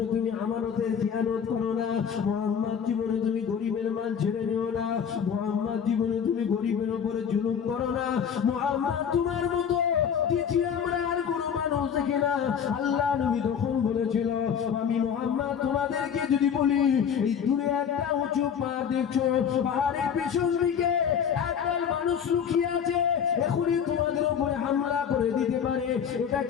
তুমি আমানতের খেয়ানত করো না, মুহাম্মদ জীবনে তুমি গরিবের মাল ছেড়ে নিও না, মুহাম্মদ জীবনে তুমি গরিবের উপরে জুলুম করো না, মুহাম্মদ তোমার মতো দ্বিতীয় আমরা আর কোনো মানুষ দেখি না। আল্লাহ নবী তখন বলেছিল আমি মুহাম্মদ তোমাদেরকে যদি বলি এই দূরে একটা উঁচু পাহাড় দেখছো, পাহাড়ের পেছন দিকে একদল মানুষ লুকিয়ে আছে, এখনই তোমাদের উপরে হামলা করে দিতে পারে,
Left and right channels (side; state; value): right; quieter; 7.7 dB